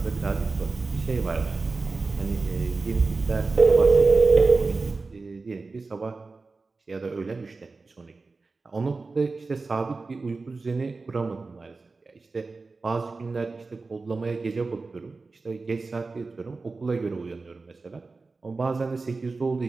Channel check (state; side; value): quieter; left; 3.9 dB